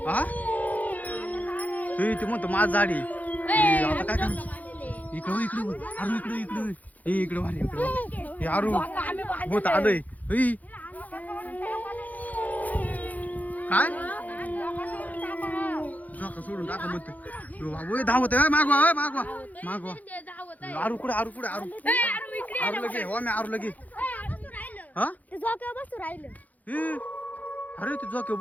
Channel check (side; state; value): right; late; 0.079 ms